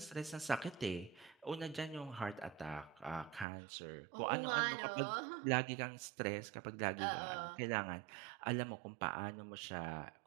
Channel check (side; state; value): left; drops out; at 3.5 s